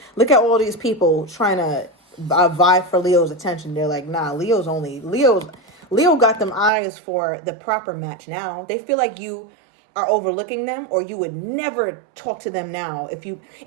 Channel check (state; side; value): drops out; left; at 6.7 s